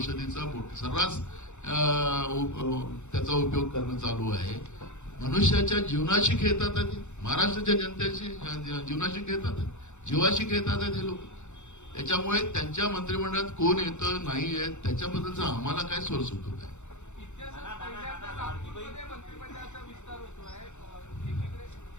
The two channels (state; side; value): late; right; 0.84 ms